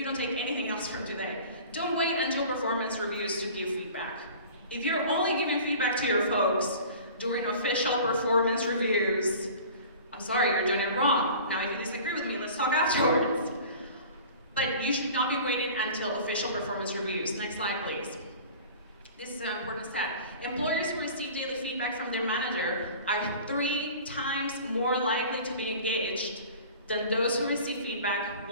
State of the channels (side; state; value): both; inverted; correlation -0.42